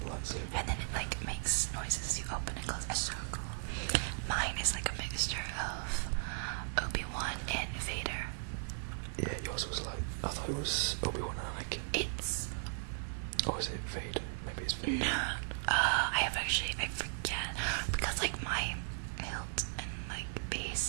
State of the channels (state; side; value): silent; left; digital silence